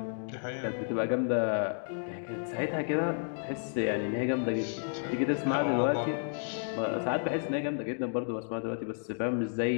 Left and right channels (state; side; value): silent; right; digital silence